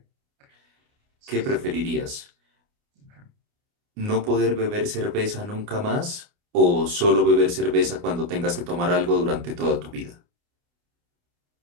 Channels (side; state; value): left; late; 29 ms